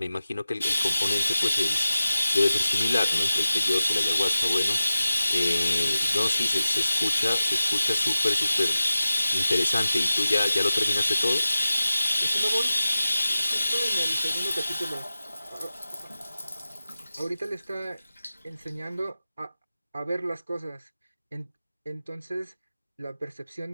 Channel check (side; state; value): both; inverted; correlation -0.94